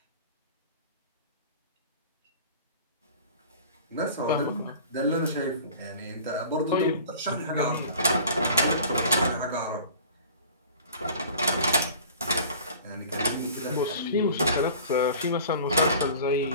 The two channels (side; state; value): both; inverted; correlation -0.43